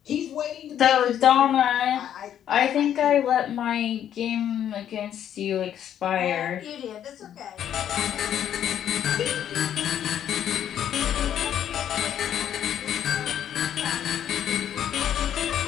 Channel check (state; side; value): quieter; right; 10.1 dB